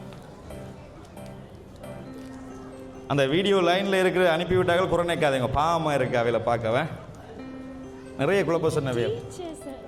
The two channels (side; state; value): both; identical; correlation 1.00